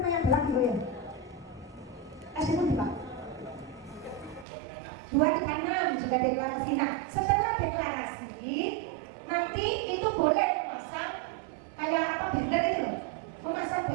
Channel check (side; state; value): left; drops out; at 4.5 s